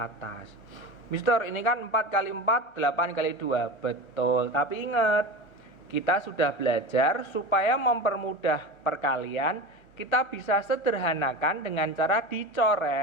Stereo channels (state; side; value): late; right; 1.2 ms